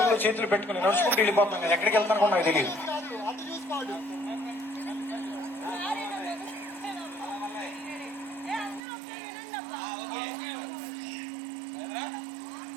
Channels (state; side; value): drops out; left; at 8.8 s